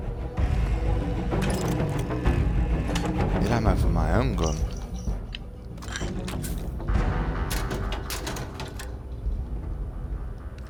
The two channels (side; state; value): both; identical; correlation 1.00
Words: Need ammo for my own gun.